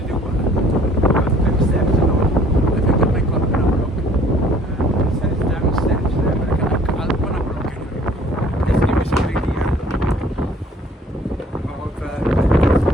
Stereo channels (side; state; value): both; normal; correlation 0.56